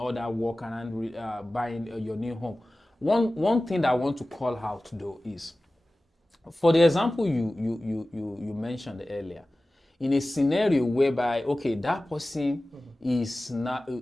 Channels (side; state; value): both; normal; correlation 0.97